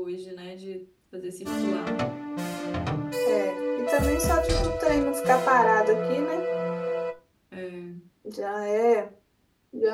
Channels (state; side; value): identical; both; correlation 1.00